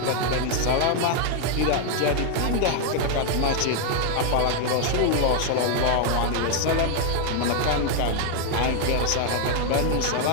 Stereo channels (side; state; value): both; different; correlation 0.00